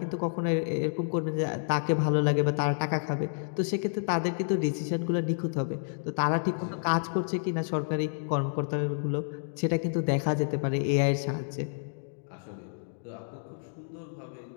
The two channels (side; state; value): right; silent; digital silence